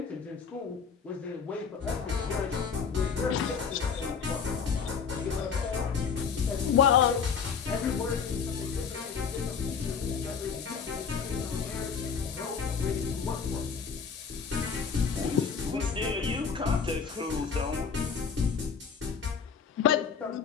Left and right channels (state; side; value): quieter; right; 6.2 dB